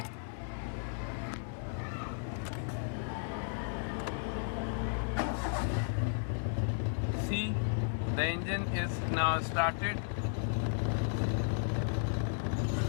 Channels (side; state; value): right; silent; 55 dB below the other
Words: See, the engine is now started.